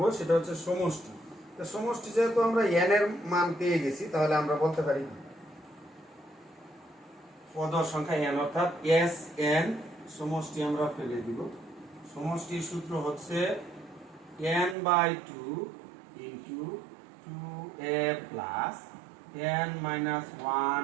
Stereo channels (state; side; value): drops out; left; at 14.8 s